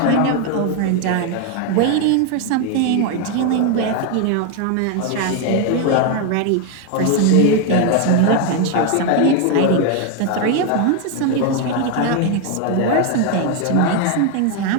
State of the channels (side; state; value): both; different; correlation 0.01